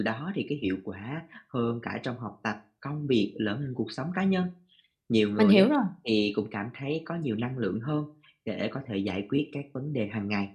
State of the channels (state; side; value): identical; both; correlation 1.00